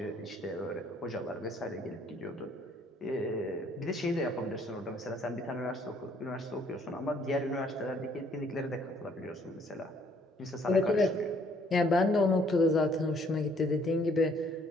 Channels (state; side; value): normal; both; correlation 0.63